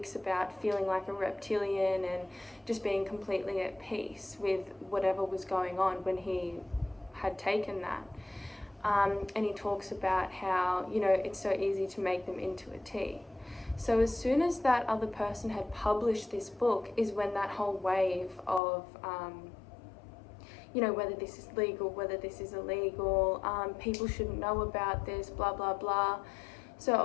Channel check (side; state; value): right; drops out; at 18.6 s